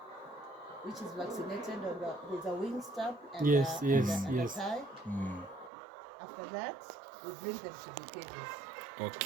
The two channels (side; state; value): left; drops out; at 5.7 s